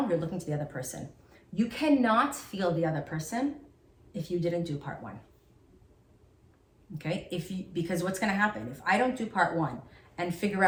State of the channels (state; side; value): identical; both; correlation 1.00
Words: you're looking to the other person. You cannot feel the other person if you didn't do part one. Okay? Because what's going to happen? If I don't do part one and figure